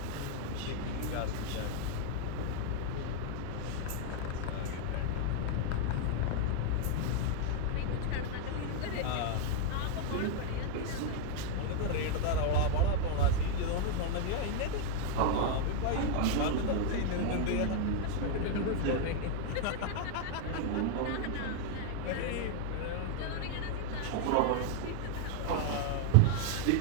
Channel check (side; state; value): both; different; correlation 0.00